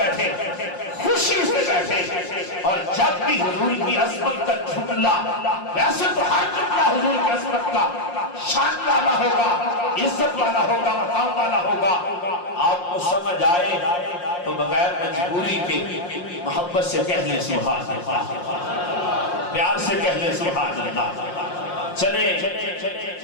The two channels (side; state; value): right; late; 5.6 ms